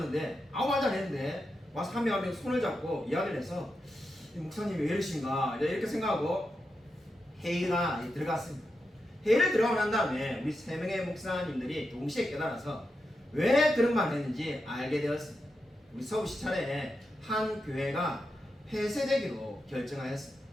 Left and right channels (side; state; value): both; normal; correlation 0.88